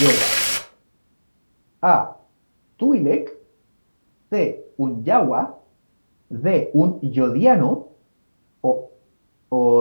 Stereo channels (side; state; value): both; inverted; correlation -1.00